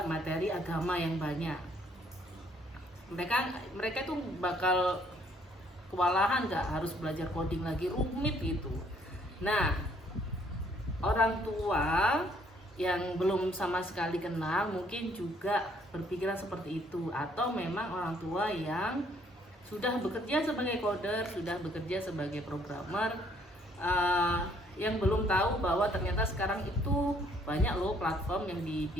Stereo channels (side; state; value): both; normal; correlation 0.65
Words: materi agama yang banyak. Mereka itu bakal kewalahan, nggak harus belajar coding lagi, rumit gitu. Nah, orang tua yang belum sama sekali kenal mungkin juga berpikiran seperti itu, atau memang orang tua yang sudah bekerja sebagai coder, sudah bekerja sebagai programmer, yang belum tahu bahwa ternyata sekarang itu banyak loh platform yang